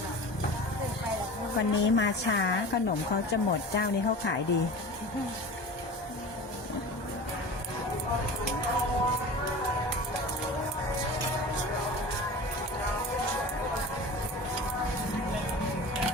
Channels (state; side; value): late; right; 1.2 ms